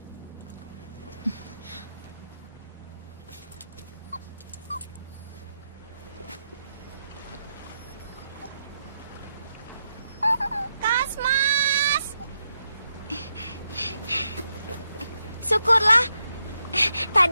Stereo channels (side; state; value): both; inverted; correlation -0.83